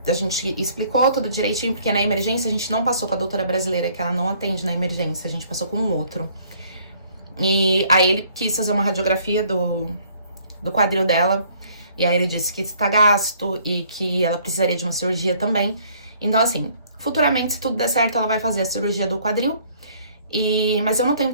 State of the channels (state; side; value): inverted; both; correlation -0.61